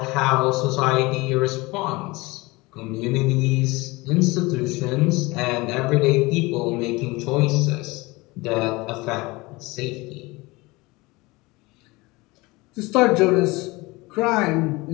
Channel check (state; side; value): quieter; right; 23.0 dB